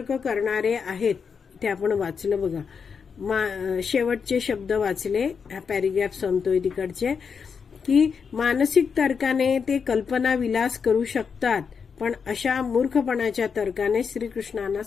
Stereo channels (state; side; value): quieter; right; 6.1 dB